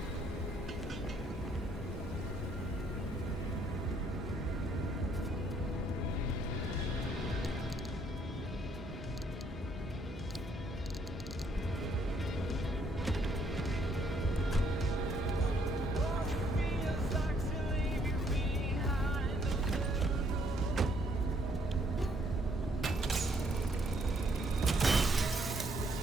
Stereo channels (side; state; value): both; normal; correlation 0.68